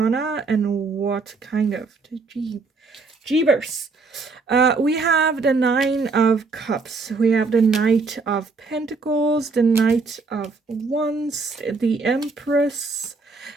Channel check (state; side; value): quieter; left; 4.1 dB